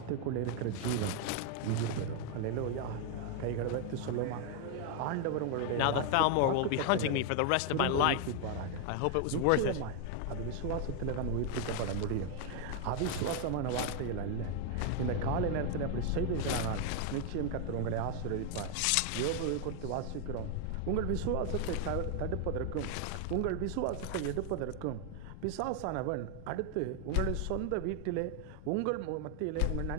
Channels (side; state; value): both; different; correlation 0.00